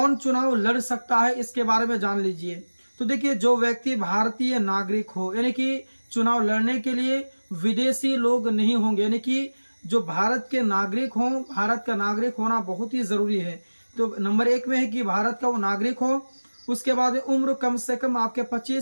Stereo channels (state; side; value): inverted; both; correlation -1.00